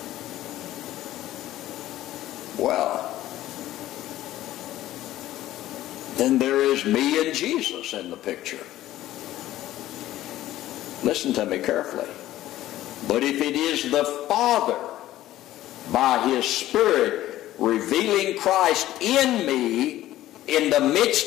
well, then there is me and Jesus in the picture. Listen to me carefully. But if it is the Father, by His Spirit, revealing Christ in me, in the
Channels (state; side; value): quieter; right; 14.4 dB